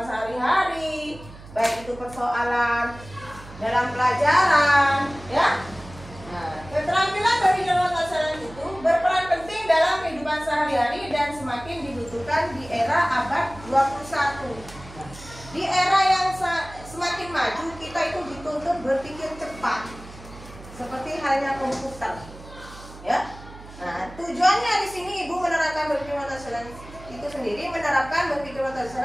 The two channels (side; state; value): right; noise; hum, 17 dB below the sound